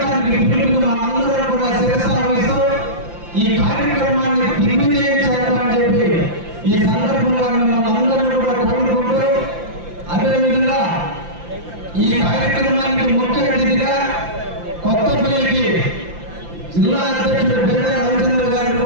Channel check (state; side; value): late; left; 5.8 ms